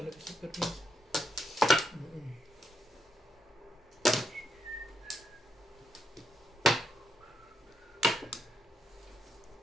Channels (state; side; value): normal; both; correlation 0.79